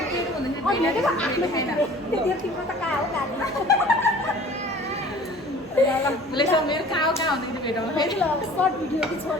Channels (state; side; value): normal; both; correlation 0.47